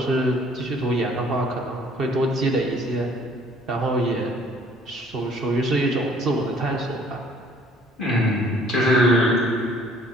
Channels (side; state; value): both; normal; correlation 0.58